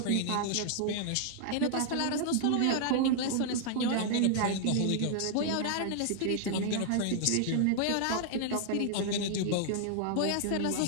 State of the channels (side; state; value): both; different; correlation -0.01